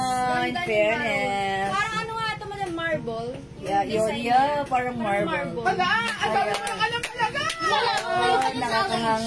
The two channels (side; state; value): both; identical; correlation 1.00